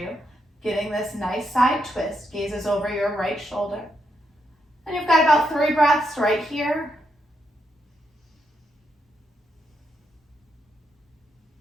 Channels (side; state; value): both; normal; correlation 0.81